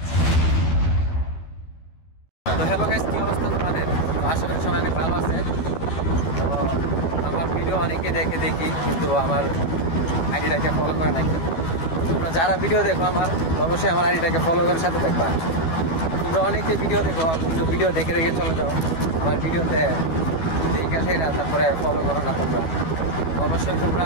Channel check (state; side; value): late; right; 12 ms